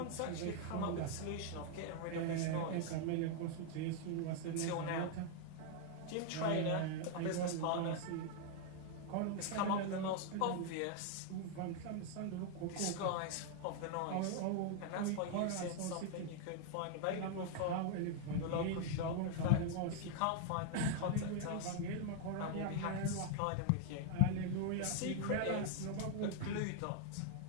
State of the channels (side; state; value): both; different; correlation 0.00